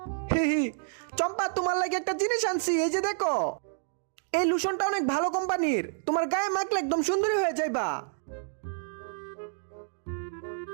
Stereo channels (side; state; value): left; silent; digital silence